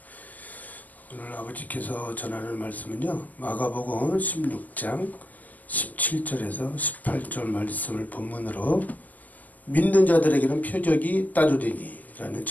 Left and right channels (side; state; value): right; late; 0.081 ms